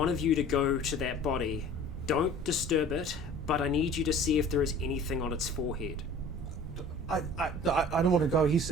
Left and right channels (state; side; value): noise; right; rumble, 12 dB below the sound